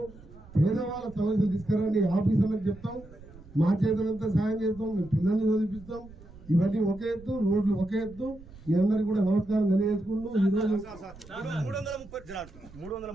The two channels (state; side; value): noise; right; rumble, 20 dB below the sound